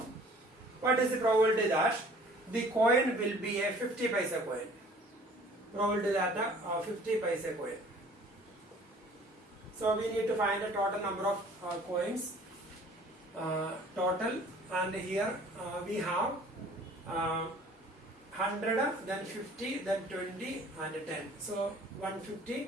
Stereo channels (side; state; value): both; normal; correlation 0.52